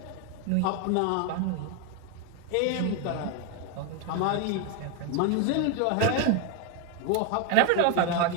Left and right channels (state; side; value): different; both; correlation 0.01